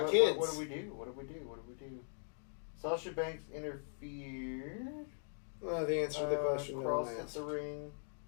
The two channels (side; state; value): right; silent; digital silence